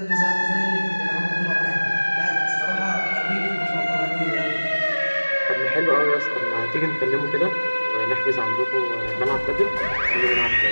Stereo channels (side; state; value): both; inverted; correlation -1.00